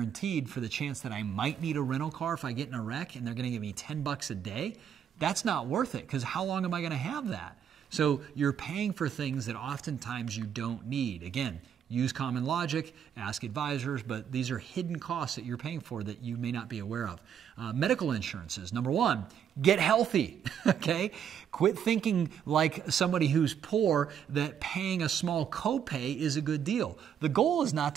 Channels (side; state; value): left; quieter; 8.6 dB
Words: for the chance that I might need a rental car if I get in a wreck and they're going to give me $10 a day, that's not worth it because how long am I going to have that? So you're paying for things that oftentimes you don't need. Again, use common logic, ask advisors, but these are hidden costs that you're paying for that you may not be aware of. Medical insurances. Number one, get healthy, okay? Quit thinking like somebody who's poor that paying a small copay is a good deal. The goal is not